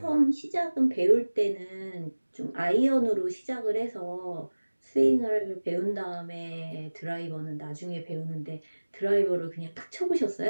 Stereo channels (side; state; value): both; inverted; correlation -1.00